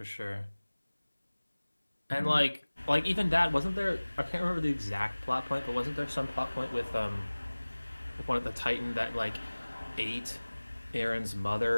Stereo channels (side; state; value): both; inverted; correlation -1.00